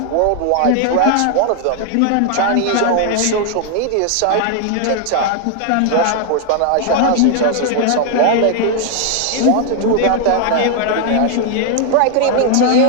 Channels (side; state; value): both; different; correlation 0.00